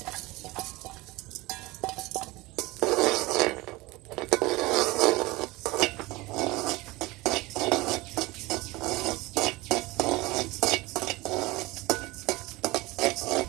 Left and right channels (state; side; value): quieter; left; 21.4 dB